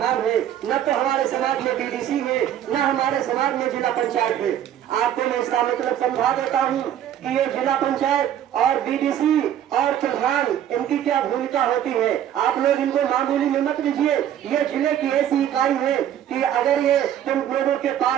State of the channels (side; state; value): left; quieter; 10.6 dB